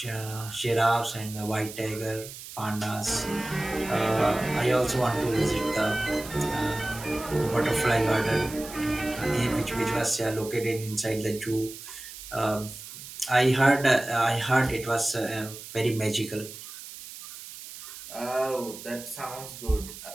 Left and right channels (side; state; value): right; noise; hiss, 13 dB below the sound